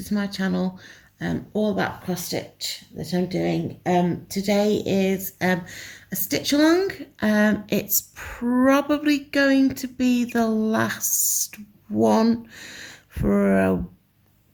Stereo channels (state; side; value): identical; both; correlation 1.00